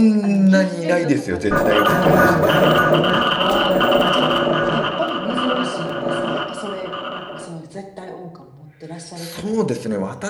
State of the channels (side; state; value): both; identical; correlation 1.00